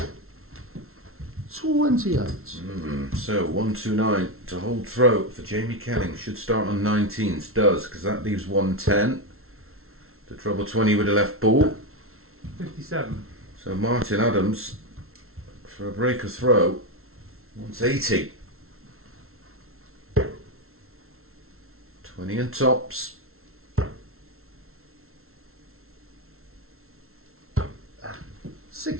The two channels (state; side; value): late; left; 0.62 ms